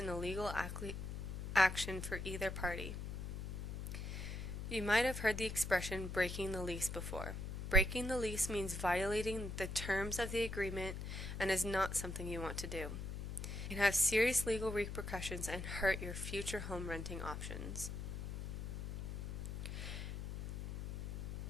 a legal action for either party. You might have heard the expression breaking the lease before. Breaking the lease means violating the terms of the agreement and is not something you want to do. It can have serious legal repercussions and hurt your future home renting options.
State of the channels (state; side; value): noise; left; hum, 5 dB below the sound